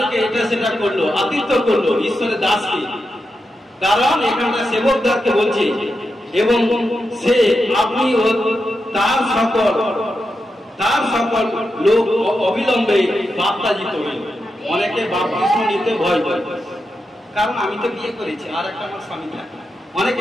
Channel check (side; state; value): both; normal; correlation 0.87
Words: এটা সেটা করলো, আতিথ্য করলো ঈশ্বরের দাসকে। কারণ এখানটা সেবকদারকে বলছে, এবং সে আপনি তার সকল লোক অবিলম্বে বাপ্তাজিত হইল। অনেকে বাপ্তিস্ম নিতে ভয় পায়, কারণ আমি তো বিয়ে করেছি, আর একটা আমার স্বামী থাকে।